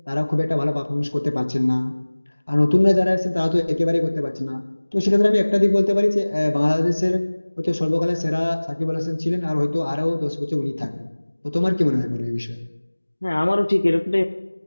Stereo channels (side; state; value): both; inverted; correlation -1.00